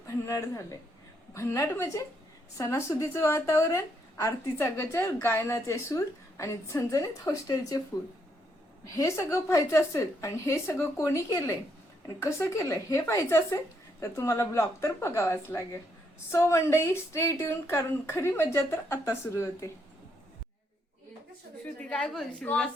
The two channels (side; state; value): both; normal; correlation 0.75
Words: भन्नाट झालंय. भन्नाट म्हणजे सणासुदीचं वातावरण, आरतीचा गजर, गायनाचे सूर आणि झणझणीत हॉस्टेलचे फूड. हे सगळं पाहायचं असेल आणि हे सगळं कोणी केलंय आणि कसं केलंय हे पाहायचं असेल तर तुम्हाला ब्लॉग तर बघावाच लागेल. सो मंडई स्टे ट्यून, कारण खरी मज्जा तर आता सुरू होते. श्रुती काय बोलशील?